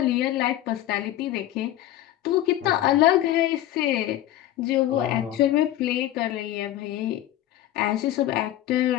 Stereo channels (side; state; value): right; quieter; 13.4 dB